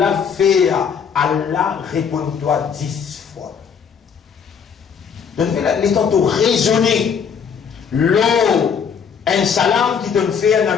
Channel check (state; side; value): quieter; right; 6.8 dB